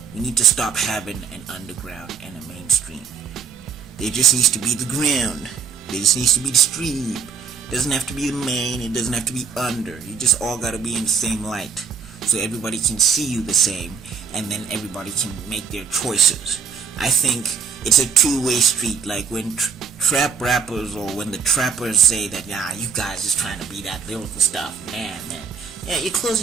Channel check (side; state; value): left; quieter; 6.3 dB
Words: we need to stop having an underground and a mainstream. There just needs to be the ground. There just needs to be the stream. Doesn't have to be the main, it doesn't have to be under. You just all gotta be in the same light, so everybody can see you the same, and then everybody can make their choices. I think it's a two-way street. Like when trap rappers, or when the trappers say that, nah, you guys just trying to be that lyrical stuff, man, yeah, you're